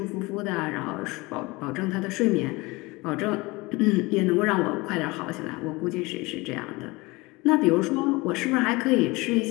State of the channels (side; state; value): right; quieter; 23.3 dB